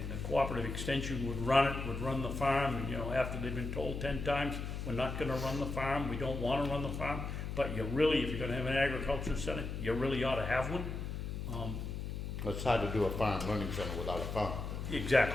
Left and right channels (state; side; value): noise; left; hum, 5 dB below the sound